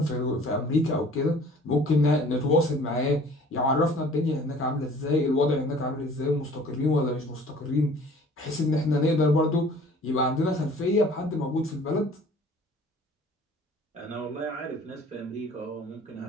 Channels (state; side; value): normal; both; correlation 0.50